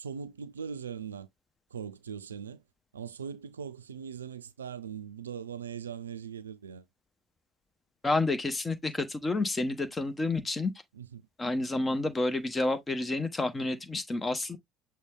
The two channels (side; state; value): both; normal; correlation 0.75